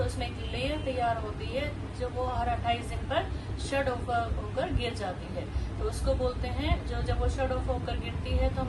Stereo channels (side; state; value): both; identical; correlation 1.00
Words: उसमें एक लेयर तैयार होती है जो वो हर 28 दिन पर शट ऑफ होकर गिर जाती है। तो उसको बोलते हैं जब वो शट ऑफ होकर गिरती है तो